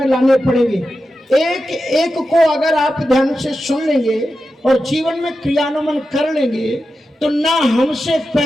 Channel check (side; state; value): both; normal; correlation 0.91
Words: लाने पड़ेंगे। एक एक को अगर आप ध्यान से सुन लेंगे और जीवन में क्रियान्वयन कर लेंगे, तो ना हमसे